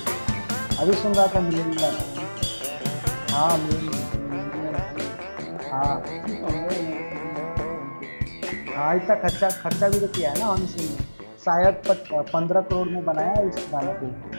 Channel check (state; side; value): inverted; both; correlation -1.00